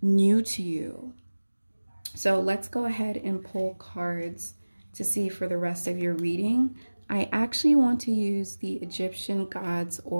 new to you. So let's go ahead and pull cards to see for the rest of your reading. I actually want to use the Egyptian Gods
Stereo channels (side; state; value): both; inverted; correlation -1.00